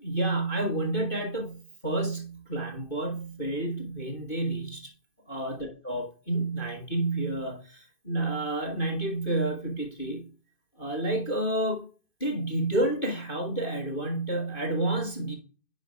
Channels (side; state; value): right; late; 2.5 ms